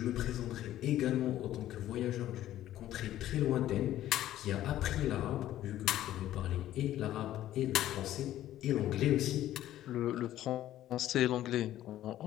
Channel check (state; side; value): quieter; right; 13.2 dB